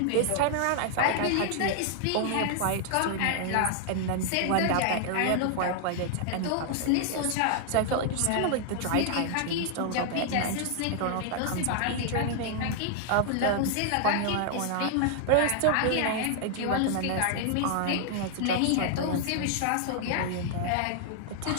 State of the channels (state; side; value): different; both; correlation 0.00